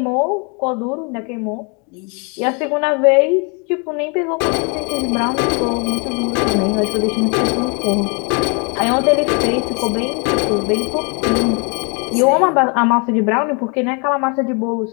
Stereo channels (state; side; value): quieter; right; 34.2 dB